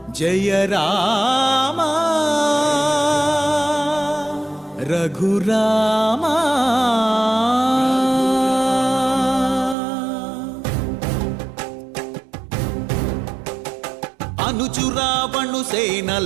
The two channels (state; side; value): drops out; left; at 9.8 s